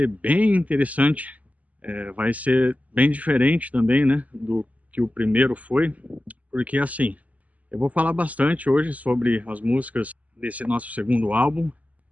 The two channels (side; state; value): left; late; 0.074 ms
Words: bem interessante, vai ser bem diferente também, né, do que o primeiro foi, porque assim, eu vou falar bastante hoje sobre as músicas desse nosso segundo álbum.